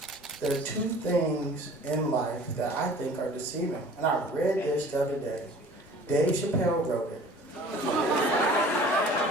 there are two things in life that I think are deceiving. And I read this the other day. Dave Chappelle wrote it.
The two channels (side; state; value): both; normal; correlation 0.47